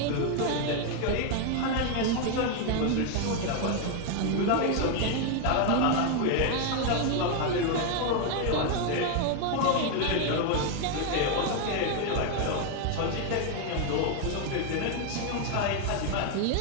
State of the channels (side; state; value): both; different; correlation 0.01